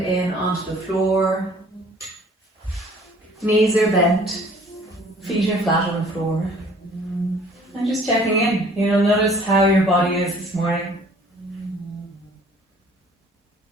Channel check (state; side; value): normal; both; correlation 0.54